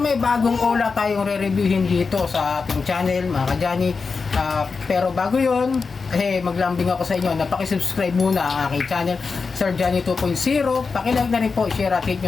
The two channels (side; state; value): right; quieter; 4.8 dB